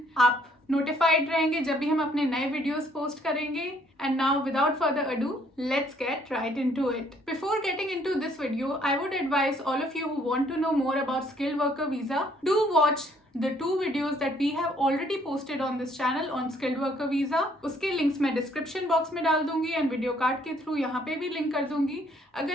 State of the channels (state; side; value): normal; both; correlation 0.65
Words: आप नोटिफाइड रहेंगे जब भी हम अपने नए वीडियोस पोस्ट करेंगे। And now, without further ado, let's get right into it. Before getting into this video, I would advise all of you who want to know more about skilled worker visa, do watch the 2 videos that we have already posted on this channel on skilled worker visa. उसके लिंक्स मैं डिस्क्रिप्शन बॉक्स में डाल दूंगी एंड वीडियो कार्ड के थ्रू यहाँ पे भी लिंक कर दूंगी।